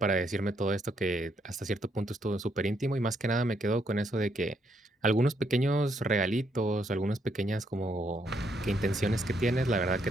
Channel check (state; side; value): normal; both; correlation 0.74